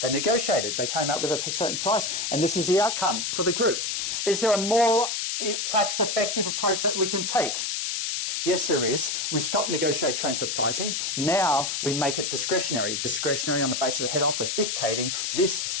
They negotiated. They came up with a certain price, and this is the outcome for the group. Is there a more tax-effective approach that we can take? Yes, there is. We stop negotiated transfer pricing. Now we make it discretionary. Discretionary on the basis of the head office dictating this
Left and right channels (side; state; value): left; noise; hiss, 1 dB below the sound